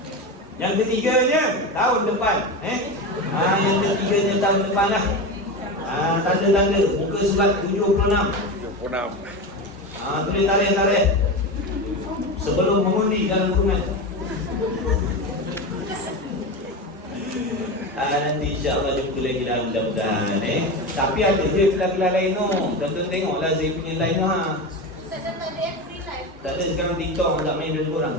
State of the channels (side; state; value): both; normal; correlation 0.22